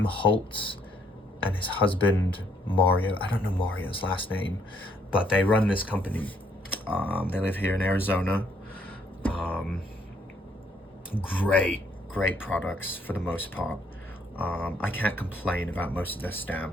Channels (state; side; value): normal; both; correlation 0.68